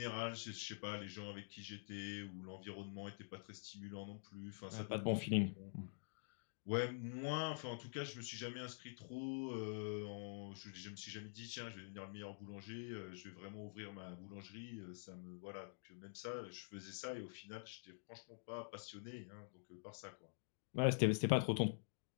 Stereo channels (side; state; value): right; silent; digital silence